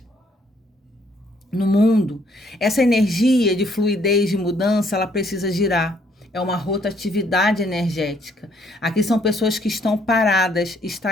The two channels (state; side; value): normal; both; correlation 0.67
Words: no mundo. Essa energia de fluidez, de mudança, ela precisa girar. É uma rotatividade energética. Aqui são pessoas que estão paradas,